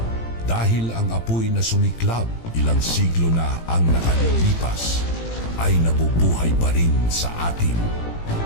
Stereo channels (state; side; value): late; right; 18 ms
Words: Dahil ang apoy na sumiklab ilang siglo na ang nakalilipas ay nabubuhay pa rin sa atin